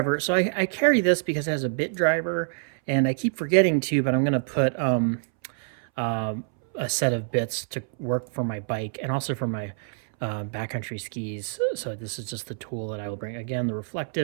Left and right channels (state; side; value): silent; left; 61 dB below the other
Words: So I carry this because it has a bit driver, and I keep forgetting to, but I'm going to put uh, a set of bits to work for my bike and also for my backcountry skis. So this is just the tool that I will bring. Again, the